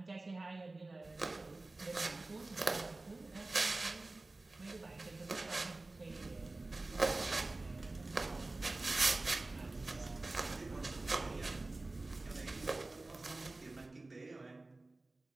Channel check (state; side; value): quieter; left; 3.1 dB